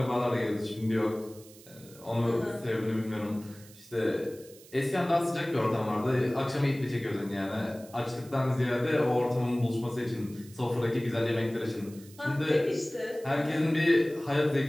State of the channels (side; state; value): right; noise; hiss, 22 dB below the sound